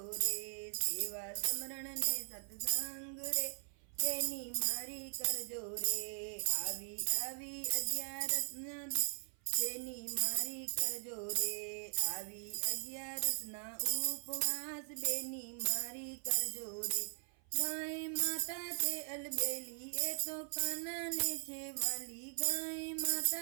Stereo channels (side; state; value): left; silent; 51 dB below the other